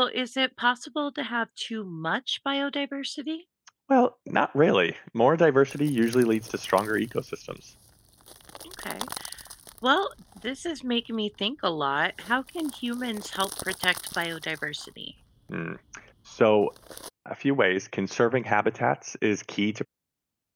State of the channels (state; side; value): identical; both; correlation 1.00